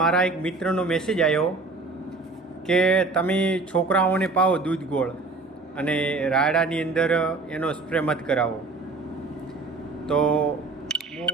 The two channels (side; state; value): left; quieter; 3.6 dB